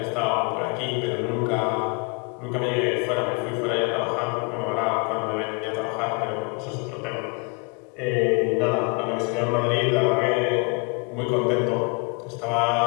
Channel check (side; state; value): right; quieter; 33.2 dB